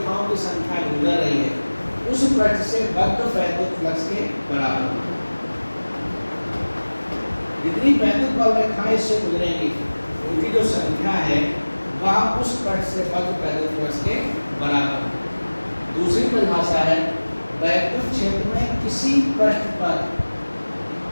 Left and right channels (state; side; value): inverted; both; correlation -1.00